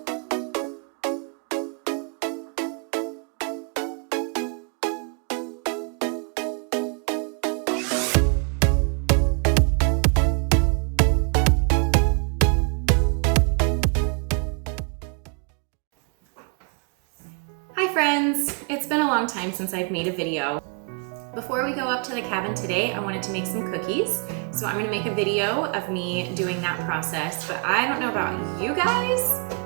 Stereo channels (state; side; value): quieter; left; 38.3 dB